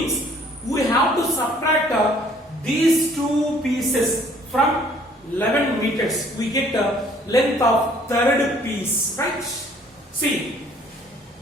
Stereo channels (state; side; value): normal; both; correlation 0.59